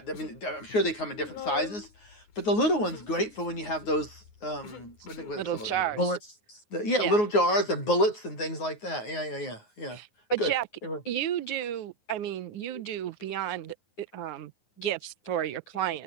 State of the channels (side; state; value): right; late; 9.5 ms